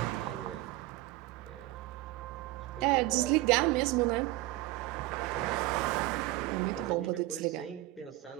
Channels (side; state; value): left; quieter; 18.0 dB